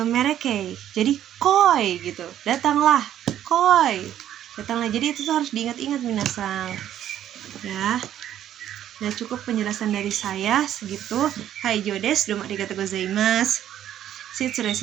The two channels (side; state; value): left; quieter; 11.1 dB